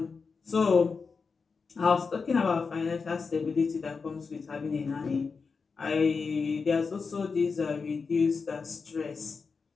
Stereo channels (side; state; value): right; quieter; 5.0 dB